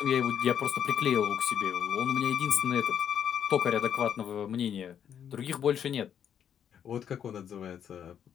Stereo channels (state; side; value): quieter; right; 8.8 dB